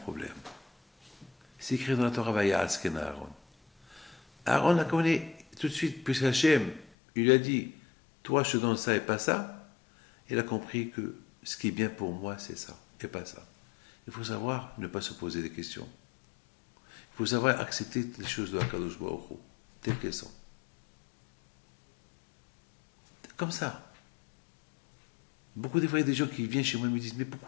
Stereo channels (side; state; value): right; drops out; at 6.9 s